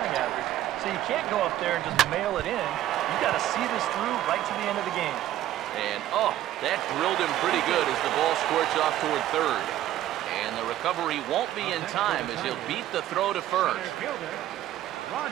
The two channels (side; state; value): left; quieter; 13.3 dB